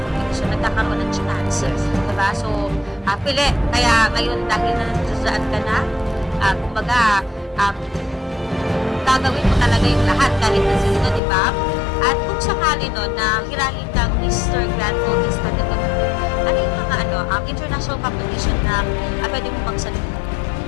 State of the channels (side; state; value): right; drops out; at 11.2 s